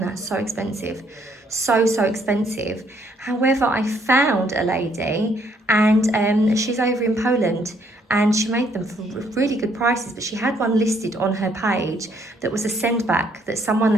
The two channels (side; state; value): both; normal; correlation 0.68